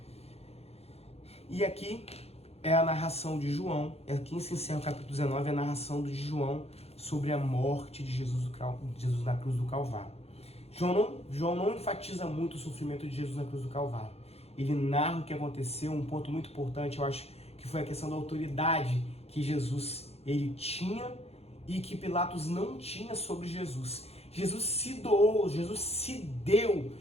E aqui é a narração de João, aqui se encerra o capítulo 19, a narração de João sobre a morte de Jesus na cruz do Calvário. João não enfatiza muito o sofrimento de Jesus na cruz do Calvário. Ele narra o que aconteceu, um ponto muito importante, eu acho, que foi a questão da autoridade que Jesus ele tinha e que Pilatos não tinha sobre Jesus. Jesus se doou, Jesus se deu,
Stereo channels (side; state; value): right; late; 0.30 ms